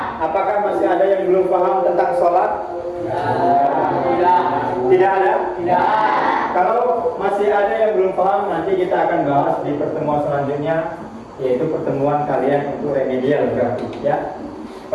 Apakah masih ada yang belum paham tentang sholat? Tidak ada? Tidak. Kalau masih ada yang belum paham, nanti kita akan bahas di pertemuan selanjutnya, yaitu pertemuan kalian untuk remedial berarti ya.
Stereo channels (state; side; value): identical; both; correlation 1.00